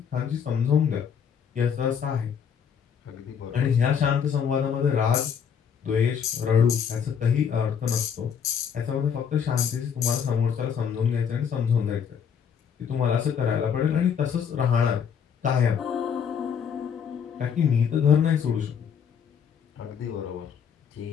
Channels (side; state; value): right; quieter; 7.5 dB